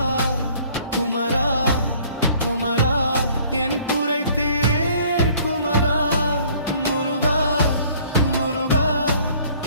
குமரா குமரா என் குறை தீர் குமரா. முருகா முருகா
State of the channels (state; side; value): inverted; both; correlation -0.56